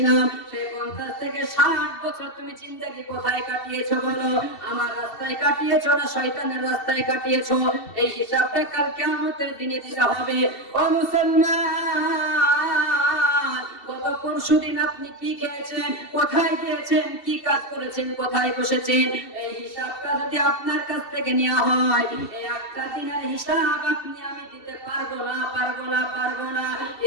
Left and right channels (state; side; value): late; right; 2.7 ms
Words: সেই 50 থেকে 60 বছর তুমি জিন্দেগি কোথায় কাটিয়েছো বলো? আমার রাস্তায় কাটিয়েছো না শয়তানের রাস্তায় কাটিয়েছো? এই হিসাবটা কাল কিয়ামতের দিনে দিতে হবে। ও মুসলমান, গত পরশুদিন আপনি কি খেয়েছেন, কোথায় গিয়েছেন, কি কাজ করেছেন, কোথায় বসেছেন, এই হিসাবটা যদি আপনার কাছ থেকে নেওয়া হয়, এই একটা দিনের হিসাব আপনি আমি দিতে পারবো না।